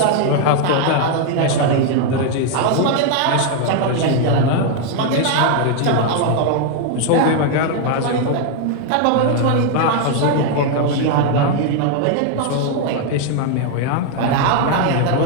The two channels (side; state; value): both; different; correlation 0.00